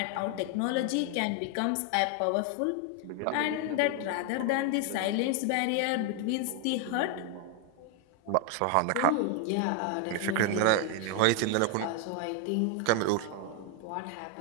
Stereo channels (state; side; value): different; both; correlation 0.00